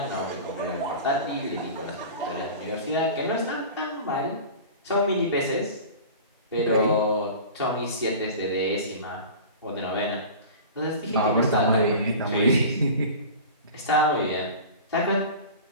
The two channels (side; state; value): both; inverted; correlation -0.36